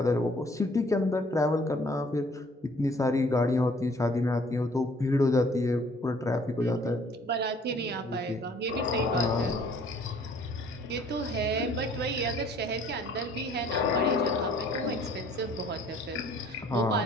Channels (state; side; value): normal; both; correlation 0.57